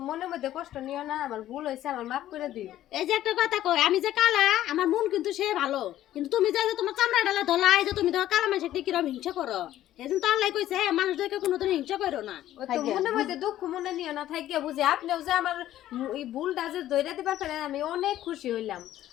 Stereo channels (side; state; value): right; quieter; 13.2 dB